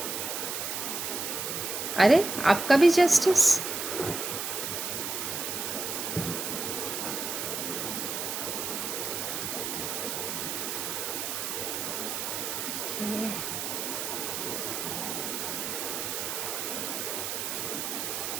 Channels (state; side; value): noise; right; hiss, 3 dB below the sound